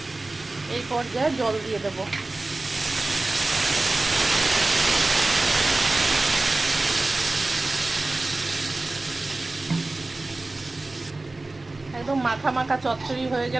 এই পর্যায়ে জল দিয়ে দেব। একদম মাখা মাখা চচ্চড়ি হয়ে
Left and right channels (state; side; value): quieter; left; 3.1 dB